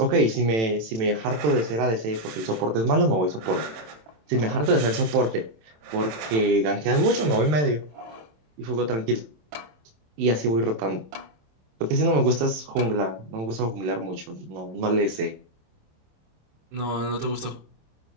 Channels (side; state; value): left; late; 27 ms